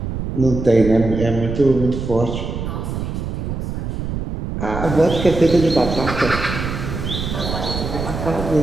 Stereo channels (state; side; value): noise; right; rumble, 5 dB below the sound